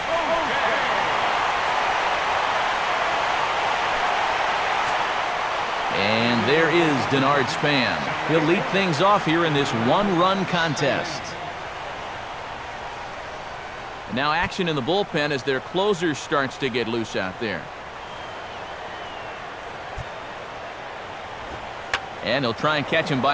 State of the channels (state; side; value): identical; both; correlation 1.00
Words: And there is Denard Span. He'll lead things off here in this one-run contest. And now action in the bullpen as their closer starts to get loose out there. And he'll try and catch him